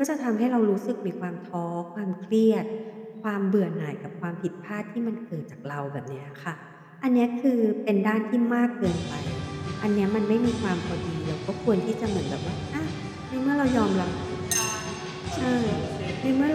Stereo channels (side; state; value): both; identical; correlation 1.00